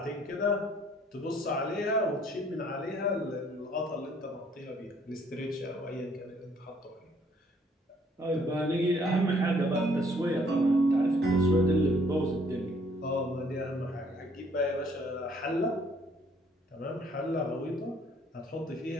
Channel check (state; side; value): normal; both; correlation 0.63